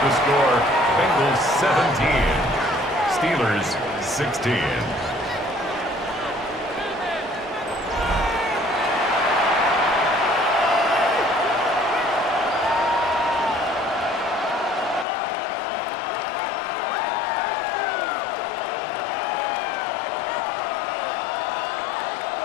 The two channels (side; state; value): right; drops out; at 15.1 s